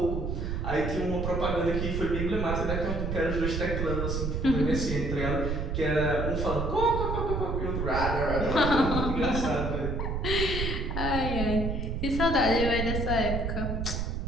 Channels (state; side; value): noise; right; rumble, 2 dB below the sound